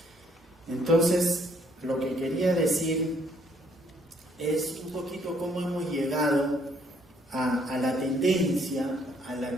Entonces, lo que quería decir es un poquito cómo hemos llegado a la tendencia a la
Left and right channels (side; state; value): both; normal; correlation 0.67